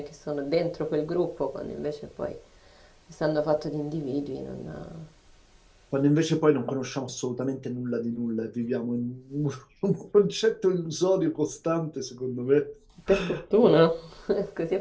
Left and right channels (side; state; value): both; identical; correlation 1.00